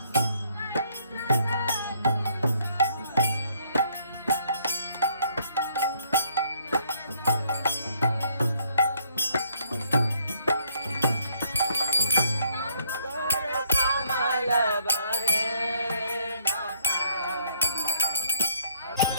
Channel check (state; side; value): inverted; both; correlation -0.67